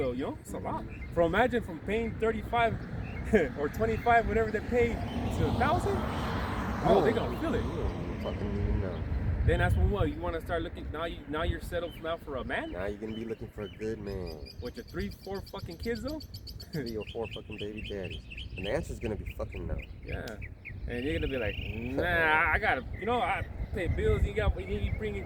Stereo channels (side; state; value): both; identical; correlation 1.00